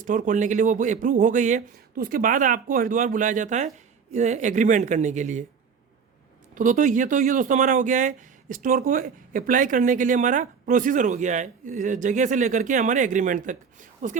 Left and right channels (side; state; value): left; quieter; 6.2 dB